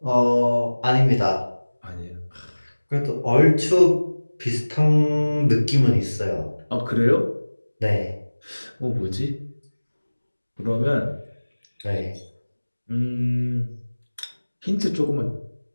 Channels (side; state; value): both; inverted; correlation -1.00